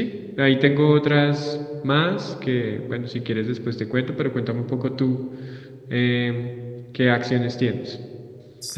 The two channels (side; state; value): both; identical; correlation 1.00